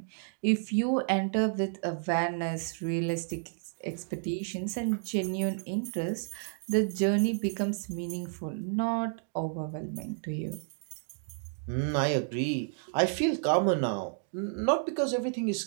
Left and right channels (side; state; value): left; silent; digital silence